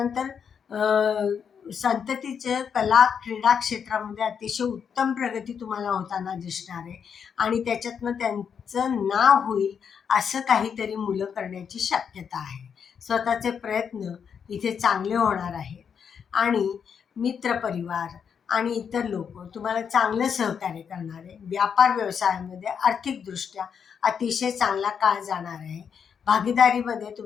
संततीचं कला क्रीडा क्षेत्रामध्ये अतिशय उत्तम प्रगती तुम्हाला होताना दिसणार आहे आणि त्याच्यातनं त्यांचं नाव होईल असं काहीतरी मुलं करण्याची शक्यता आहे. स्वतःचे प्रयत्न इथे चांगले होणार आहेत आणि मित्रपरिवार आणि इतर लोक तुम्हाला चांगलं सहकार्य करणार आहे. व्यापार व्यवसायामध्ये आर्थिकदृष्ट्या अतिशय चांगला काळ जाणार आहे. भागीदारीमध्ये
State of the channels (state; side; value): quieter; right; 7.1 dB